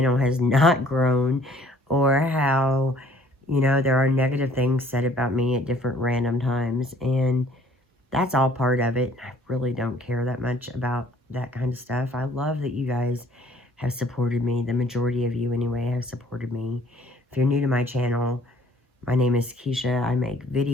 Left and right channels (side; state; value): both; normal; correlation 0.57